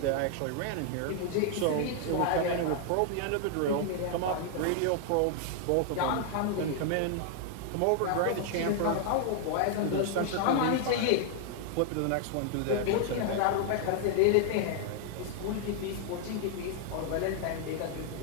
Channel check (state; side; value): different; both; correlation 0.00